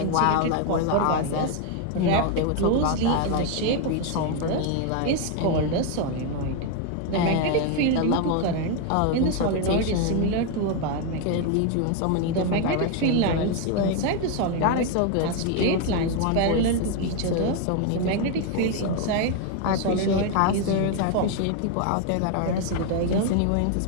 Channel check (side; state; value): both; different; correlation 0.01